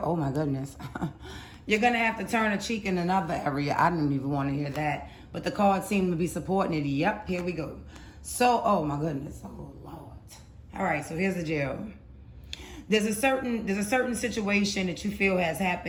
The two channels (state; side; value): identical; both; correlation 1.00